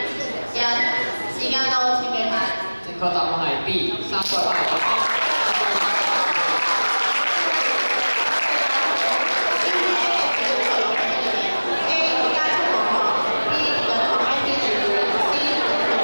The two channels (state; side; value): inverted; both; correlation -1.00